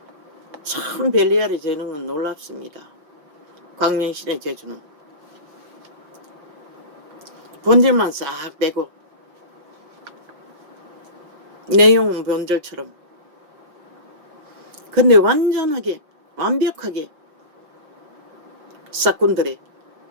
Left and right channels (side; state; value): left; late; 5.7 ms